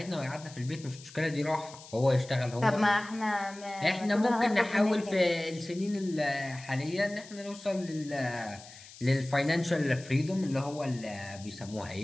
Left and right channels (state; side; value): noise; left; hiss, 18 dB below the sound